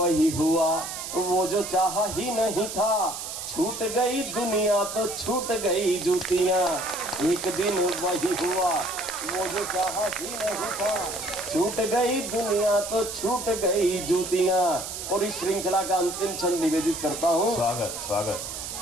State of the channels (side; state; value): right; noise; hiss, 7 dB below the sound